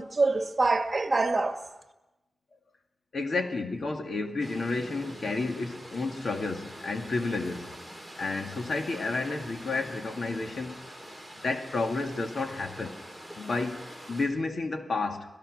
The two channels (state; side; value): normal; both; correlation 0.89